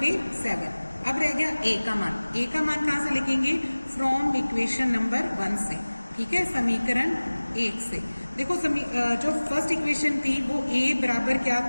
7। अब रह गया a का मान, a का मान कहाँ से लिखेंगे फ्रॉम इक्वेशन नंबर 1 से, ठीक है, समीकरण 1 से। देखो जो फर्स्ट इक्वेशन थी वो a बराबर क्या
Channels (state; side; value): inverted; both; correlation -1.00